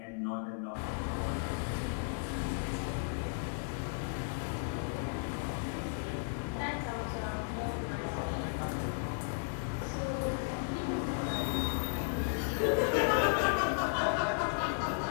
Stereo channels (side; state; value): right; silent; 55 dB below the other